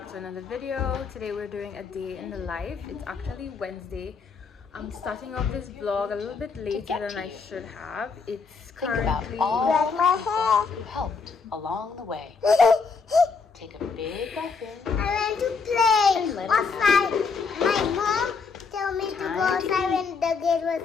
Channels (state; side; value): quieter; right; 5.0 dB